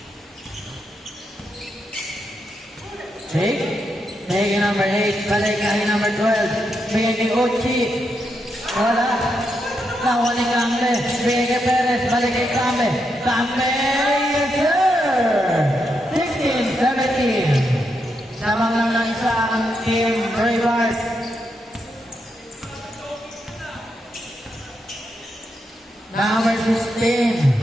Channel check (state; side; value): normal; both; correlation 0.83